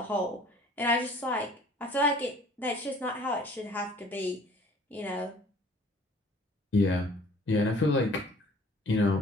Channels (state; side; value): normal; both; correlation 0.52